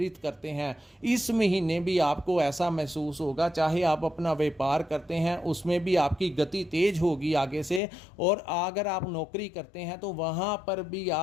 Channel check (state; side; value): drops out; right; at 7.8 s